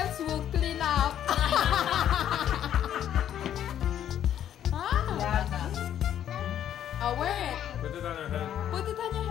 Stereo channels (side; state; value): right; quieter; 10.4 dB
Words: will clean up. Wear it. Put it on her head. Put it on your